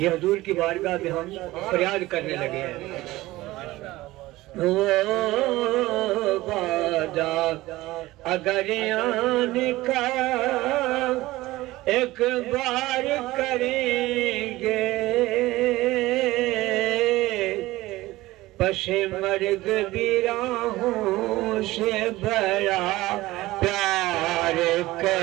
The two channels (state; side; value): quieter; left; 18.2 dB